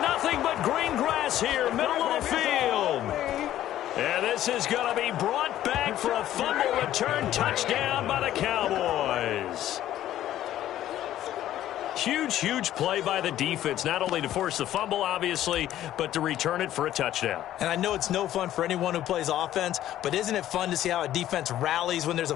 nothing but green grass here, middle of the field. And this is going to be brought back for a fumble return touchdown by the Cowboys. Huge play by the defense, not only to force the fumble, obviously, but to return it for a touchdown. And I know it's no fun for anyone who plays offense, but isn't it fun to see how a defense rallies when there's a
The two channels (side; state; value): right; quieter; 12.7 dB